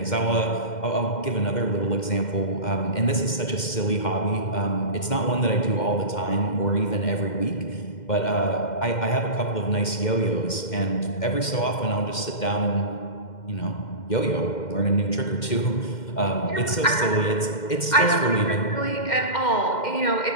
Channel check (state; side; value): late; right; 2.1 ms